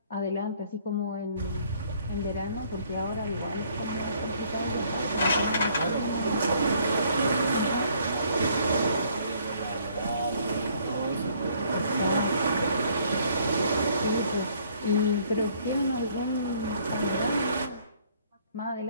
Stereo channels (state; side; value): inverted; both; correlation -0.63